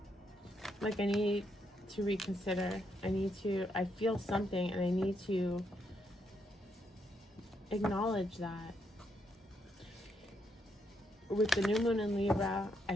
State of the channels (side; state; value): both; normal; correlation 0.77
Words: like I need to reconsider. I feel something and I need to acknowledge that. With the new moon in Libra, I